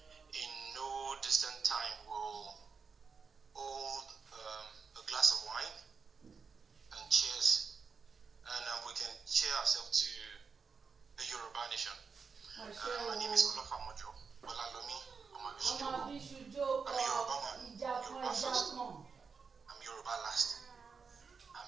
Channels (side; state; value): left; quieter; 5.4 dB